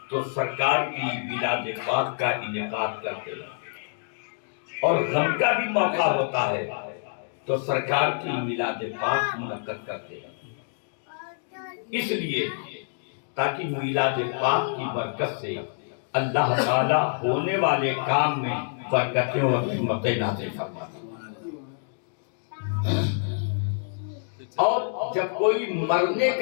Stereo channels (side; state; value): right; silent; digital silence